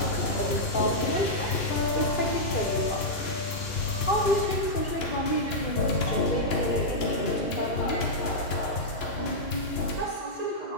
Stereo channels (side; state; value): right; late; 2.9 ms